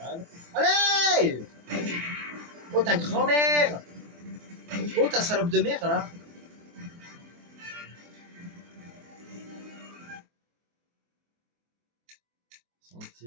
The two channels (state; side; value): late; left; 24 ms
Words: Allez! Oh, ta grand-mère! Oh, ta salope de mère, là!